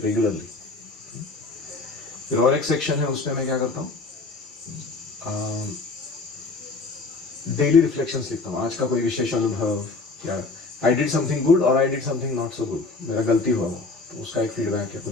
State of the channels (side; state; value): right; quieter; 3.7 dB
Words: regularly. फिर और एक सेक्शन है, उसमें मैं क्या करता हूँ, डेली रिफ्लेक्शंस लिखता हूँ। आज का कोई विशेष अनुभव, या आई डिड समथिंग गुड और I did something not so good, मेरा गलती हुआ वो, तो उसका एक फीडबैक या